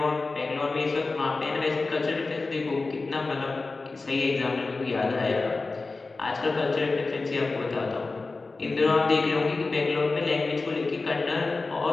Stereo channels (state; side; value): quieter; right; 3.7 dB